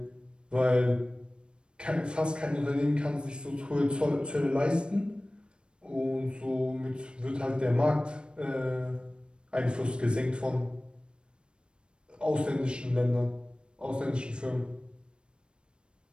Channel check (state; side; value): late; left; 0.054 ms